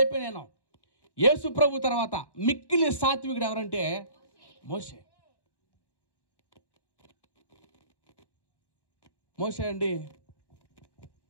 నేను. యేసు ప్రభు తర్వాత మిక్కిలి సాత్వికుడు ఎవరంటే మోషే. మోషే అండి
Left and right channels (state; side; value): late; right; 1.1 ms